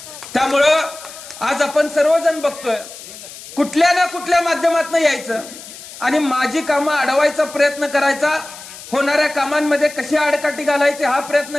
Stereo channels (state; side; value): noise; left; hiss, 15 dB below the sound